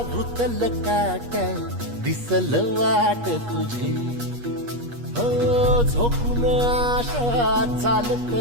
रुतल काटा दिसल वाट तुझी हो झोकून आशा चालत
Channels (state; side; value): late; left; 8.4 ms